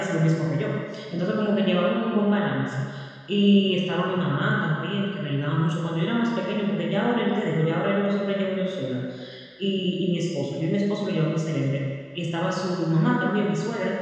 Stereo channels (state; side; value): identical; both; correlation 1.00